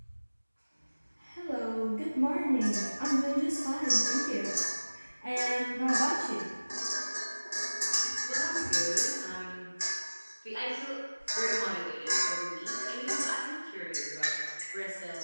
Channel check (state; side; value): inverted; both; correlation -1.00